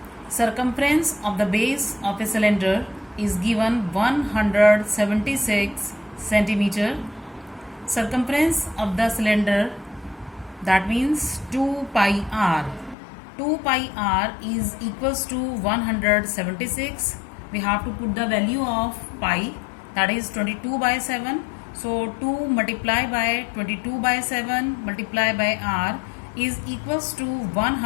circumference of the base of a cylinder is given 176 centimeter. Circumference of the cylinder, that means 2 pi r. 2 pi r is equals to 176. We have to put the value of pi, that is 22 by 7. So 2 multiplied by 22 by 7 multiplied by r is equals to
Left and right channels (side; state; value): right; drops out; at 13.0 s